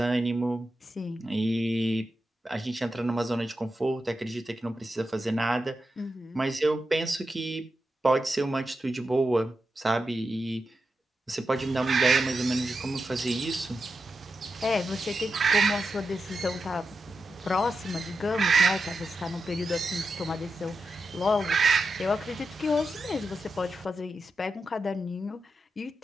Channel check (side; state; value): both; normal; correlation 0.88